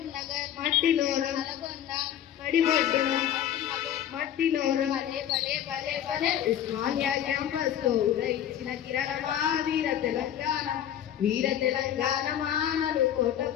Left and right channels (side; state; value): right; quieter; 10.5 dB